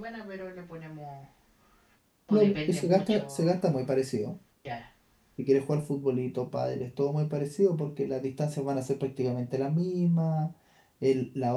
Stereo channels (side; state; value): both; identical; correlation 1.00